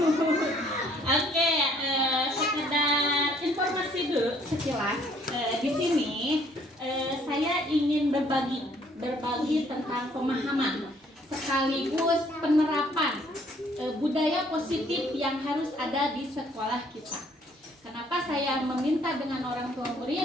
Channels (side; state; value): both; normal; correlation 0.62